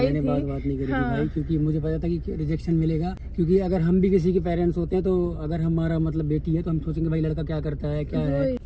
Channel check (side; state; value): both; identical; correlation 1.00